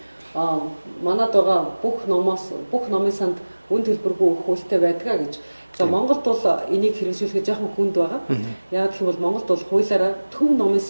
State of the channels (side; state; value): both; inverted; correlation -1.00